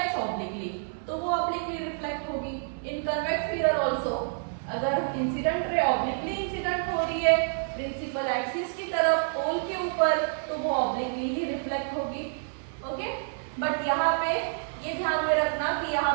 ऑब्लिकली, तो वो ऑब्लिकली रिफ्लेक्ट होगी। इन कन्वेक्स मिरर आल्सो अगर इंसिडेंट रे ऑब्लिकली इंसिडेंट हो रही है प्रिंसिपल एक्सिस की तरफ पोल के ऊपर, तो वो ऑब्लिकली ही रिफ्लेक्ट होगी। ओके, बट यहाँ पे ये ध्यान में रखना कि यहाँ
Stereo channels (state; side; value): silent; left; 59 dB below the other